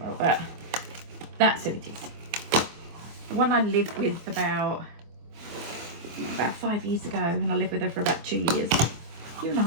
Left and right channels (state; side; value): late; left; 24 ms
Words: But that's who it is. The one I lived with about 5 years ago, and I lived with her for about 2 years.